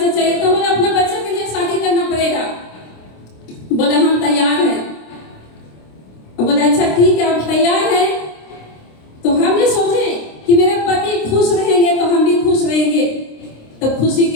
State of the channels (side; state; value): right; late; 26 ms